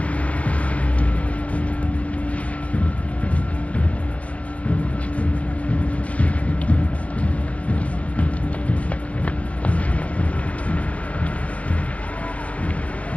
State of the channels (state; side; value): late; right; 0.066 ms